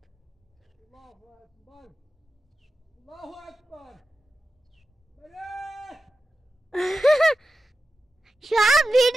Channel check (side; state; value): both; normal; correlation 0.92